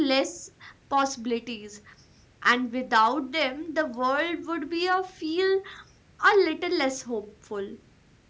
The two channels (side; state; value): both; identical; correlation 1.00